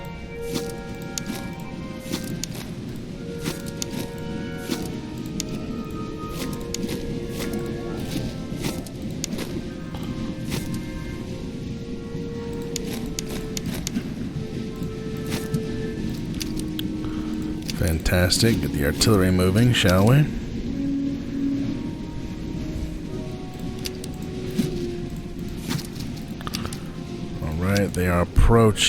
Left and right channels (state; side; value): identical; both; correlation 1.00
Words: Fantastic. Get the artillery moving, shall we? Alright, they are